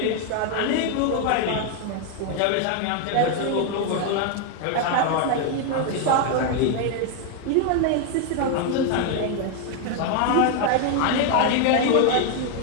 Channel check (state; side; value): different; both; correlation 0.01